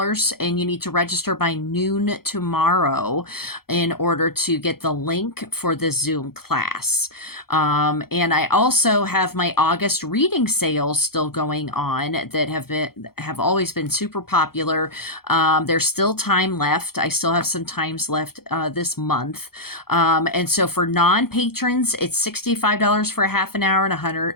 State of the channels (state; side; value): late; right; 0.94 ms